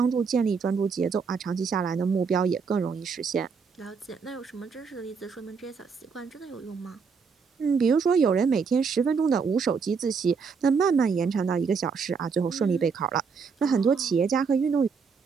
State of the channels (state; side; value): quieter; left; 5.5 dB